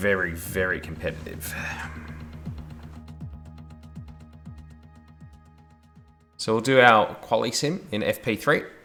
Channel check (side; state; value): both; identical; correlation 1.00